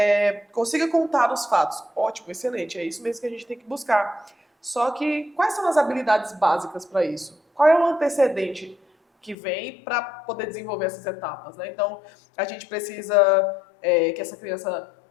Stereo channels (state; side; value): drops out; right; at 9.3 s